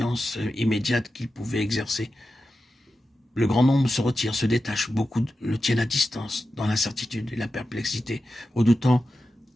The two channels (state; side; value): normal; both; correlation 0.91